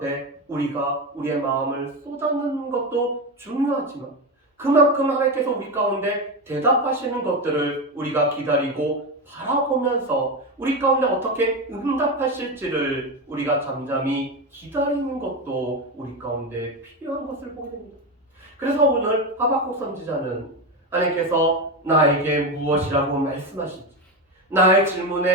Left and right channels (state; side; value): normal; both; correlation 0.16